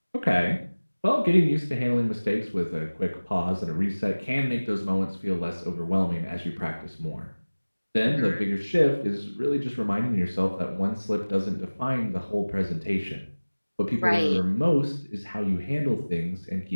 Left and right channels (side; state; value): both; inverted; correlation -1.00